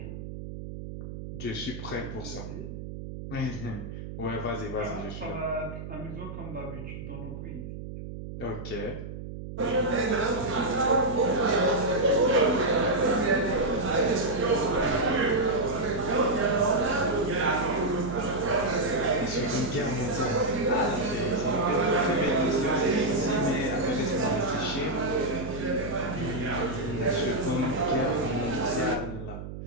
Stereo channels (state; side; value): noise; right; hum, 9 dB below the sound